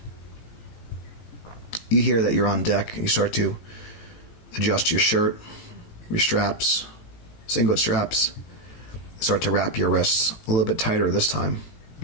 You hear that you're on deck. You start to adjust your shirt, your straps, singlet straps. Start to wrap your wrists a little bit tighter this time.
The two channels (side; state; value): right; late; 18 ms